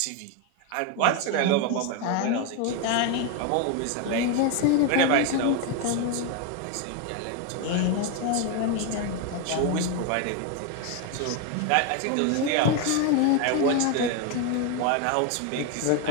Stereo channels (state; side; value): different; both; correlation 0.01